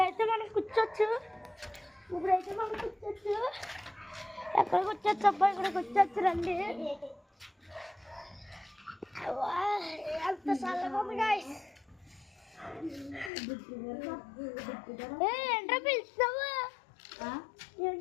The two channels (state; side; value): drops out; right; at 13.3 s